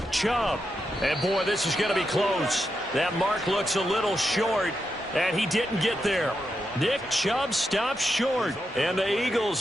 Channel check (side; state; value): both; normal; correlation 0.85